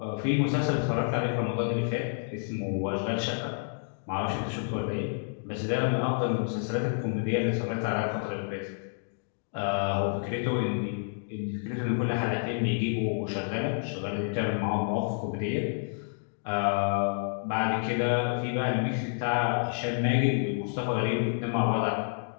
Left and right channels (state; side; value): silent; right; digital silence